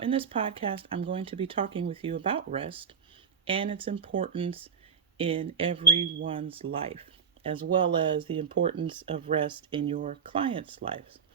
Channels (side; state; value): left; quieter; 6.9 dB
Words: this podcast, I'm going to be talking with you about rest and its importance in everyone's life, as well as the importance of rest in your clients' lives.